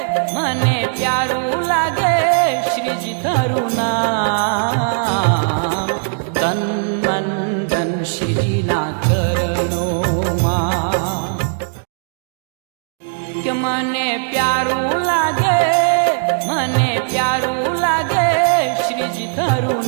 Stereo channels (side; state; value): left; silent; digital silence